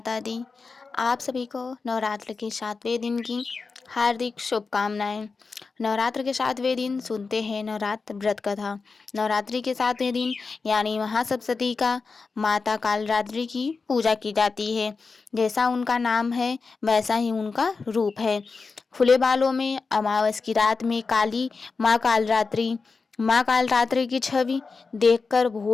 दी। आप सभी को नवरात्र के 7वें दिन की हार्दिक शुभकामनाएं। नवरात्र के 7वें दिन सुनते हैं नवरात्र व्रत कथा। नवरात्रि के 7वें दिन यानी महासप्तमी का माता कालरात्रि की पूजा की जाती है। जैसा उनका नाम है वैसा ही उनका रूप है। खुले बालों में अमावस की रात में काली माँ कालरात्रि की छवि देखकर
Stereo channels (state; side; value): quieter; right; 4.5 dB